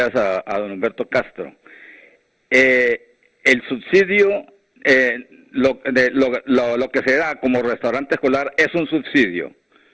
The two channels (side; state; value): both; identical; correlation 1.00